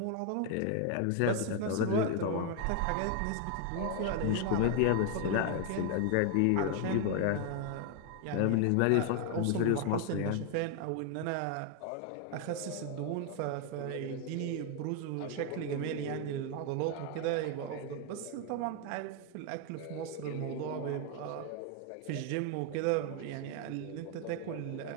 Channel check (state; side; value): different; both; correlation 0.01